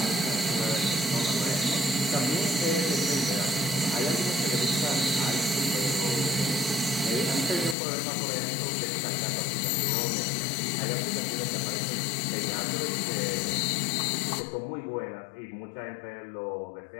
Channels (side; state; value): right; drops out; at 7.8 s